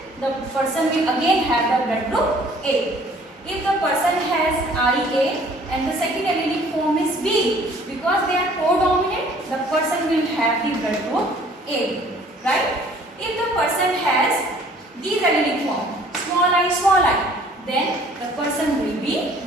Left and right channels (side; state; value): both; normal; correlation 0.55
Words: the person will again have the blood group A. If the person has IA and the second allelic form is B, because they are codominant, the person will have the blood group A, right? If the person has these allelic form, small I, then the person will be